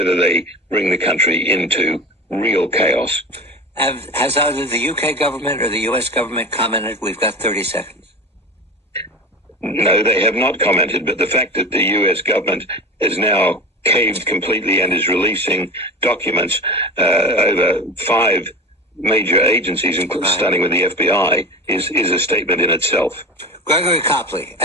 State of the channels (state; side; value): normal; both; correlation 0.30